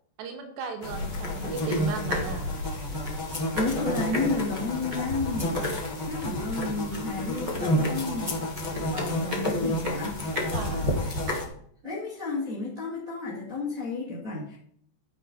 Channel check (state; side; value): late; left; 14 ms